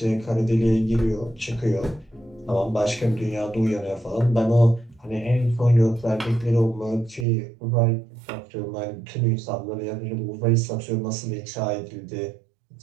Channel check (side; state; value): left; drops out; at 7.2 s